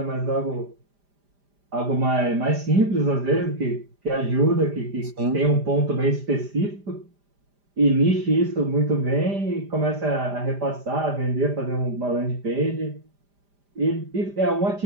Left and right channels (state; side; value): late; left; 5.0 ms